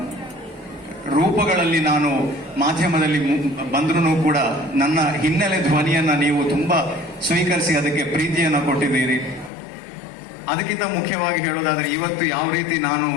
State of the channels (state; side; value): drops out; right; at 9.5 s